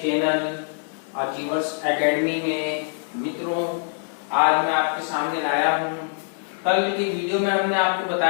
चैनल अचीवर्स एकेडमी में। मित्रों, आज मैं आपके सामने लाया हूं। कल की वीडियो में हमने आपको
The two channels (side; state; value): right; silent; digital silence